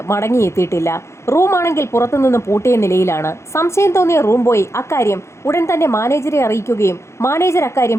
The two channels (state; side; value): late; right; 0.13 ms